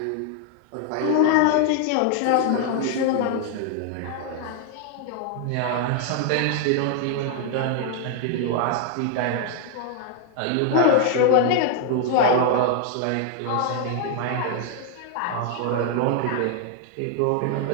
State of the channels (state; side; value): different; both; correlation 0.00